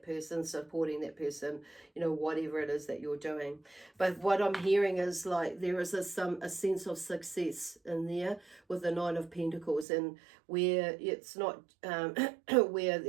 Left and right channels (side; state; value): left; drops out; at 9.9 s